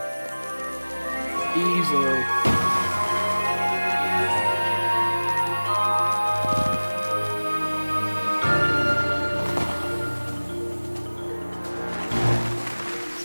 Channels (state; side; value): inverted; both; correlation -1.00